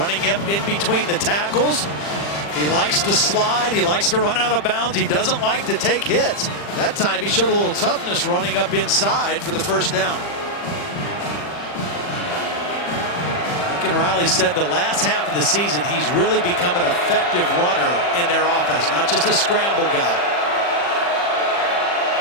up in between the tackles. He likes to slide. He likes to run out of bounds. He doesn't like to take hits. That time he showed a little toughness running up inside for the first down. Lincoln Riley said the last half of the season he's really become an effective runner in their offense, not just a scramble guy.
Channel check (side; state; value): right; late; 40 ms